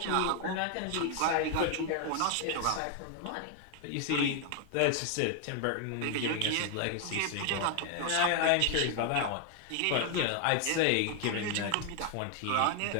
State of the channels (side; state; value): both; different; correlation 0.00